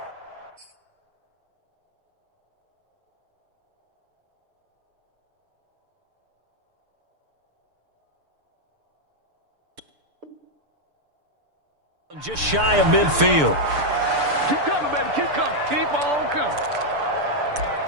Just shy of midfield. Keep coming, baby. Keep coming. Keep on coming.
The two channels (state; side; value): late; left; 6.8 ms